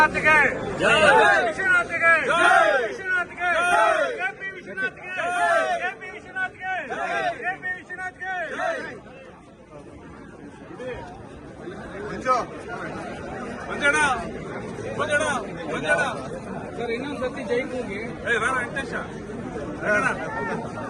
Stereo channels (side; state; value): both; identical; correlation 1.00